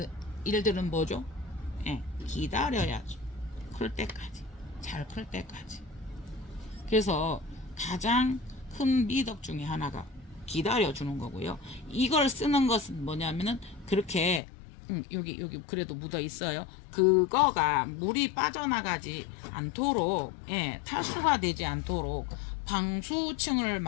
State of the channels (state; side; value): drops out; right; at 14.4 s